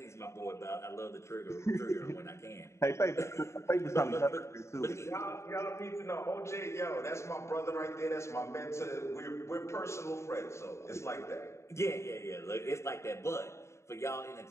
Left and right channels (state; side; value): late; right; 0.14 ms